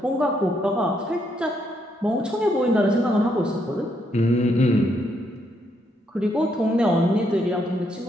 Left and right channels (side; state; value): both; normal; correlation 0.75